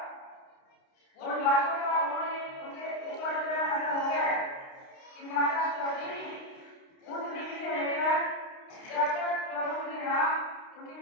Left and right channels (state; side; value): late; right; 29 ms